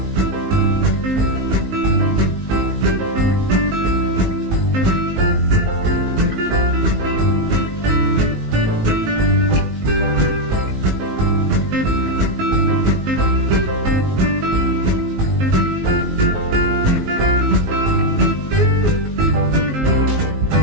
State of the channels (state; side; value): late; left; 19 ms